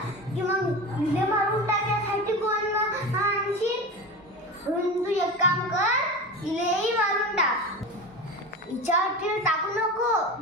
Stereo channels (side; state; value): both; normal; correlation 0.27